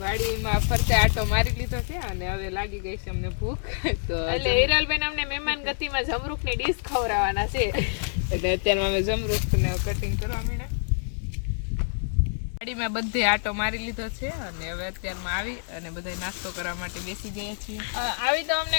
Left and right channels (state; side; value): silent; right; digital silence